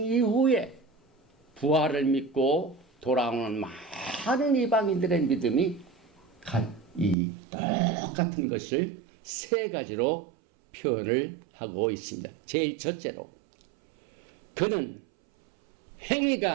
이후에 부활을 믿고 돌아오는 많은 이방인들의 믿음이 이 똑같은 것을 세 가지로 표현을 하고 있습니다. 제일 첫째로 그는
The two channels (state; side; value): drops out; left; at 7.2 s